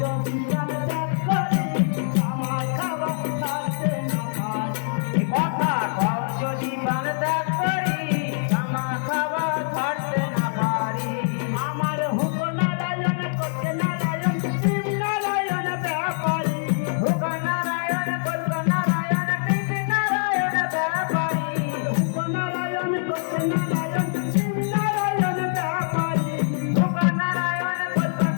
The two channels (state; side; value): silent; right; digital silence